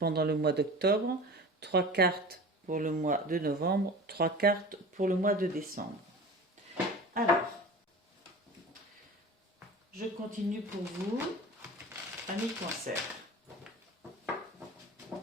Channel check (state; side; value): normal; both; correlation 0.36